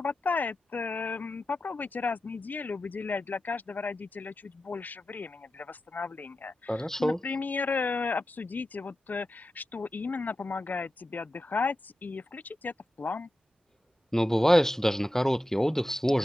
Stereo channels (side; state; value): both; normal; correlation 0.92